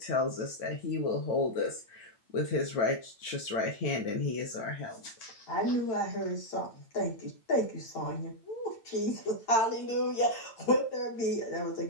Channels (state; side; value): late; right; 8.9 ms